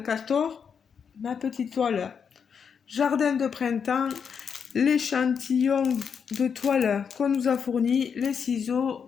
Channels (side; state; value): right; quieter; 6.7 dB